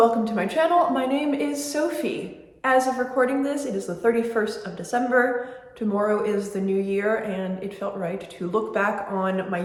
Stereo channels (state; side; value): identical; both; correlation 1.00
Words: to my channel. My name is Sophie. As of recording this, it is the 31st of December. Tomorrow is the new year, and it felt right to look back on my